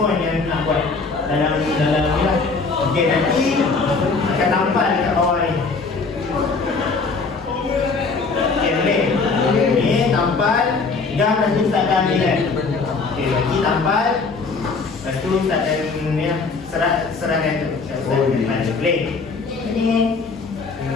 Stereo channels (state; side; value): quieter; right; 4.4 dB